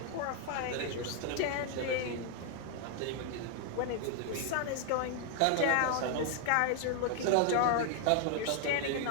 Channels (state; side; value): different; both; correlation 0.00